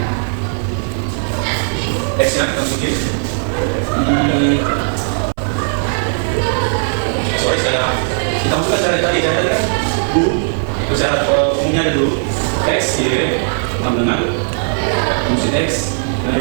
X nya kita masukin sorry kita masukkan cara tadi kan cara umumnya dulu X, Y sama dengan fungsi X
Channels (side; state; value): left; silent; 61 dB below the other